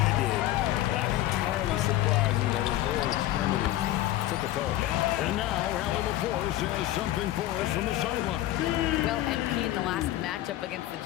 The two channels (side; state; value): right; quieter; 14.6 dB